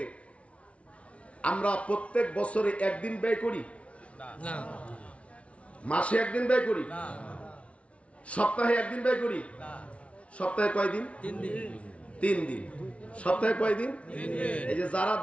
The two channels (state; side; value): late; right; 0.062 ms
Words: আমরা প্রত্যেক বছরে একদিন ব্যয় করি না, মাসে একদিন ব্যয় করি না, সপ্তাহে একদিন ব্যয় করি না। সপ্তাহে কয়দিন? 3 দিন। সপ্তাহে কয়দিন? 3 দিন। এই যে যারা